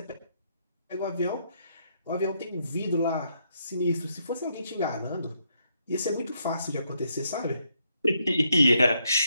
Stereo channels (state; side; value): inverted; both; correlation -0.76